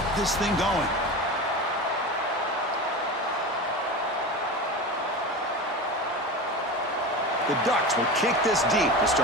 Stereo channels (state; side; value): normal; both; correlation 0.27